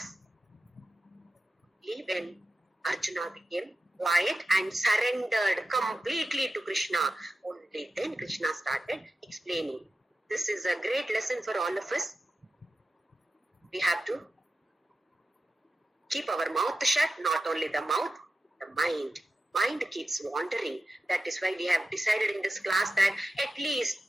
When Arjuna became quiet and surrendered completely to Krishna, only then Krishna started explaining. This is a great lesson for all of us. We have to keep our mouth shut, not only the mouth, the mind. Mind keeps wandering. That is why we have decided in this class that at least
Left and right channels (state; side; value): normal; both; correlation 0.92